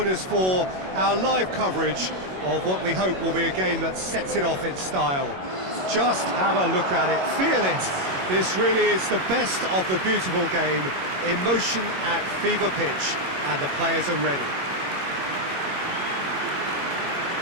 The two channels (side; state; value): left; late; 21 ms